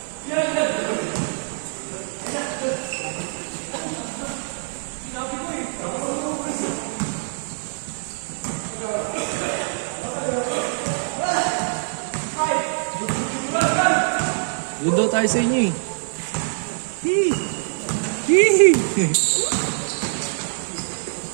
Yun daw tayo sa inyo eh. Hee! Hee!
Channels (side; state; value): left; silent; 61 dB below the other